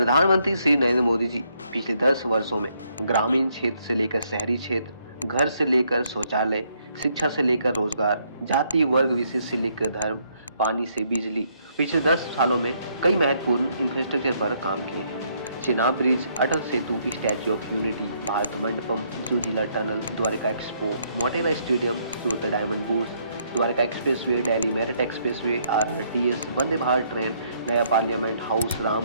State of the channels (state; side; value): inverted; both; correlation -0.71